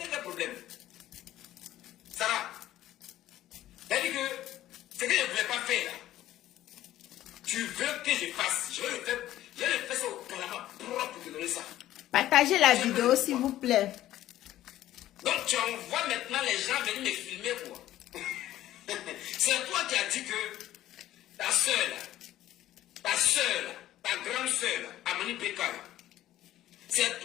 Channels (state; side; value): quieter; right; 13.8 dB